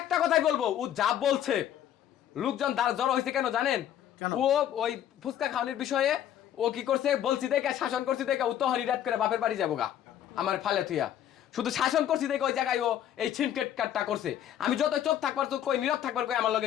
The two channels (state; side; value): quieter; right; 10.8 dB